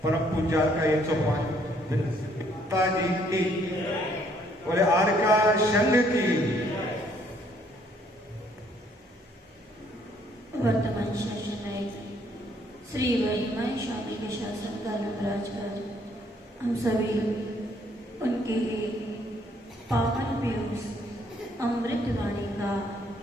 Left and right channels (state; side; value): normal; both; correlation 0.66